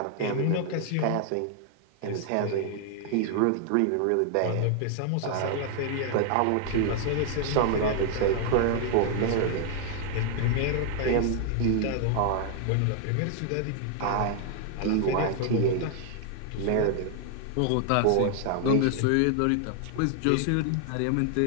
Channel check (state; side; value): different; both; correlation 0.00